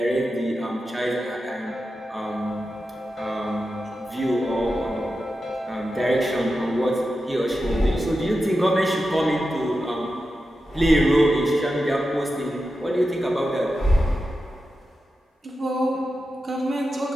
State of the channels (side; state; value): both; normal; correlation 0.91